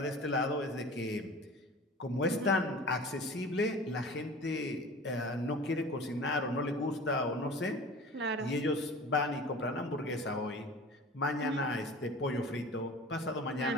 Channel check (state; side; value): normal; both; correlation 0.40